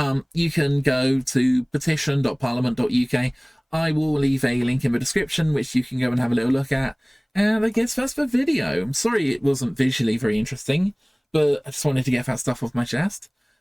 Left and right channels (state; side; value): identical; both; correlation 1.00